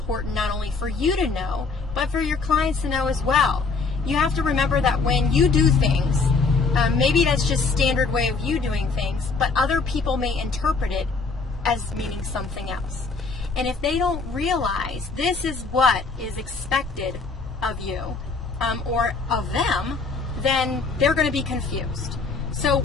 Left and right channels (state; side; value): quieter; right; 4.3 dB